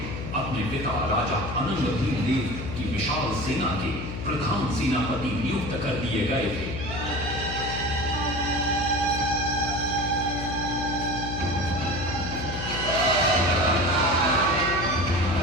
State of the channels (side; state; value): left; noise; hum, 6 dB below the sound